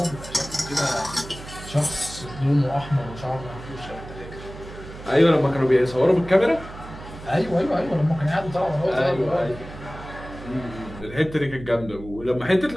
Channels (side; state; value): right; noise; hum, 14 dB below the sound